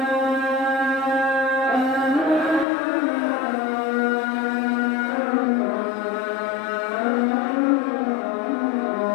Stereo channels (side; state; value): right; drops out; at 2.7 s